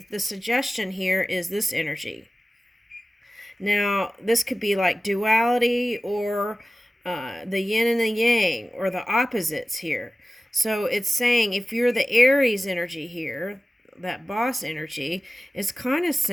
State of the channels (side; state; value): both; normal; correlation 0.96